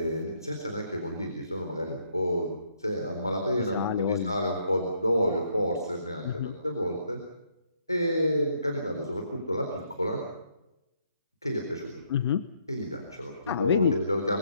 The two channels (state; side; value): inverted; both; correlation -0.71